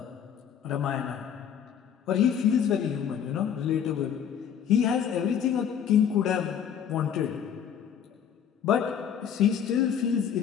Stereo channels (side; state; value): right; quieter; 8.4 dB